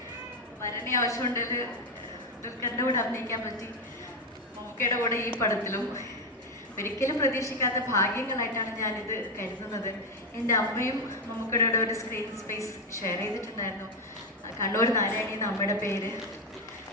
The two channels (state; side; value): normal; both; correlation 0.09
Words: വരണേ ആവശ്യമുണ്ടെങ്കിൽ ദുൽഖറിൻ്റെ കൂടെ അഭിനയിക്കാൻ പറ്റി, മമ്മൂക്കയുടെ കൂടെ ഈ പടത്തിലും. ഒരിക്കലും പ്രതീക്ഷിക്കാത്ത ഭാഗ്യങ്ങളായിട്ടാണ് ഞാനിത് കരുതുന്നത്. എൻ്റെ അമ്മയും മമ്മൂക്കയുടെ കൂടെ ഒരു സ്ക്രീൻ സ്പേസ് ഷെയർ ചെയ്തിട്ടുണ്ടായിരുന്നു. കണ്ണൂർ നാരായണി എന്ന അമ്മയുടെ പേര്.